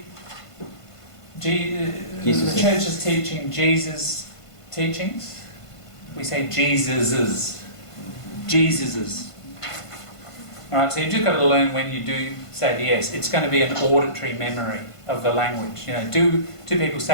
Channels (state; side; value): late; right; 1.5 ms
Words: church is teaching Jesus' teachings? We say Jesus's. Jesus's. Alright, so you've just got to learn when you do say the S. It's going to be an auditory memory of the language. Do people